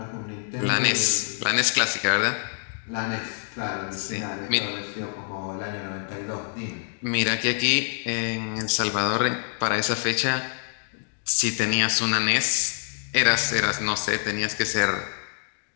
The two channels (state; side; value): silent; right; 61 dB below the other